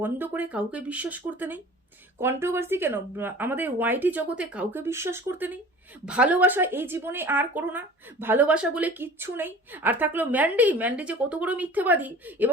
করে কাউকে বিশ্বাস করতে নেই, কন্ট্রোভার্সি কেন আমাদের ওয়াইটি জগতে কাউকে বিশ্বাস করতে নেই, ভালোবাসা এই জীবনে আর করো না, ভালোবাসা বলে কিচ্ছু নেই। আর থাকলো ম্যান্ডি যে কত বড় মিথ্যেবাদী,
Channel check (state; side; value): normal; both; correlation 0.42